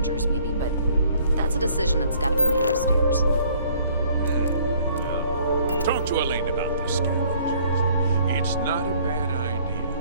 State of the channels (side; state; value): both; inverted; correlation -0.59